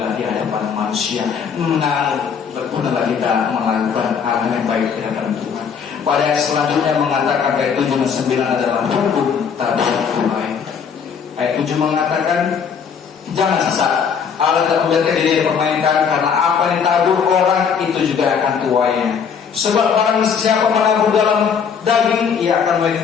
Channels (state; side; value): quieter; right; 6.8 dB